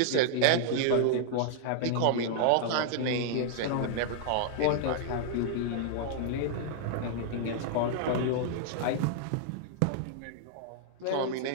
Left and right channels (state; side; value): different; both; correlation -0.01